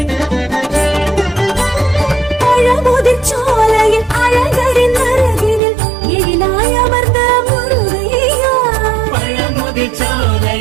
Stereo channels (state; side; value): drops out; left; at 5.6 s